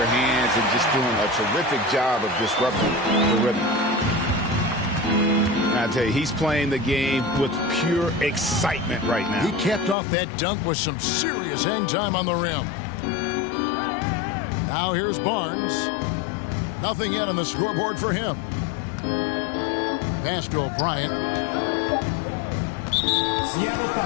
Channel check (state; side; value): drops out; right; at 10.0 s